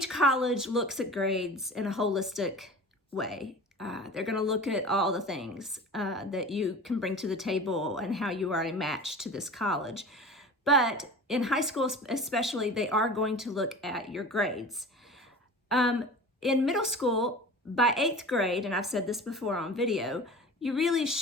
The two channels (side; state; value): both; normal; correlation 0.37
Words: college looks at grades in a holistic way. They're going to look at all the things that you can bring to the table and how you are a match to this college. But in high school especially, they are going to look at your grades. In middle school, by 8th grade, and I've said this before on video, you really